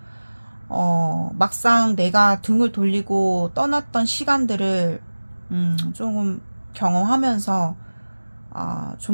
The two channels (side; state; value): both; inverted; correlation -1.00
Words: 막상 내가 등을 돌리고 떠났던 시간들을, 조금 경험하면서,